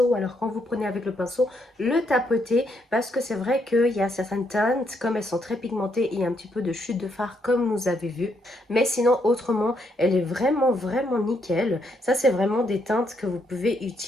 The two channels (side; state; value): both; normal; correlation 0.75